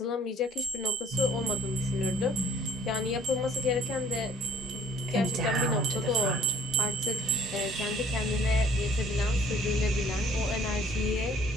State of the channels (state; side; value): normal; both; correlation 0.56